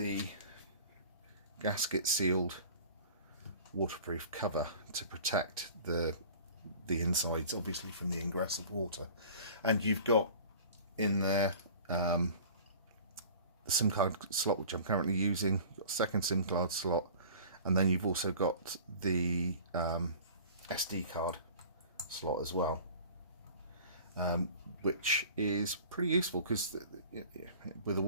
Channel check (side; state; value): both; inverted; correlation -0.43